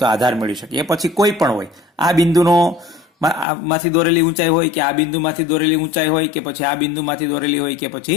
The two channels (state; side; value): drops out; right; at 3.5 s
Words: તો આધાર મેળવી શકીએ. એ પછી કોઈ પણ હોય, આ બિંદુનો માંથી દોરેલી ઊંચાઈ હોય કે આ બિંદુમાંથી દોરેલી ઊંચાઈ હોય કે પછી આ બિંદુમાંથી દોરેલી હોય કે